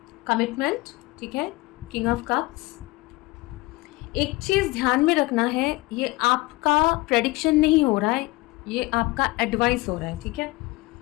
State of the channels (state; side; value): quieter; right; 21.8 dB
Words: Commitment, ठीक है, किंग ऑफ कप्स। एक चीज़ ध्यान में रखना है, ये आपका प्रेडिक्शन नहीं हो रहा है, ये आपका एडवाइस हो रहा है, ठीक है।